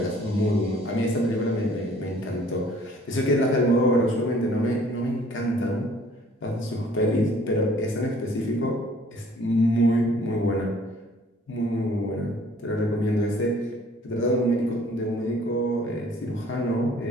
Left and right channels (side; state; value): both; normal; correlation 0.56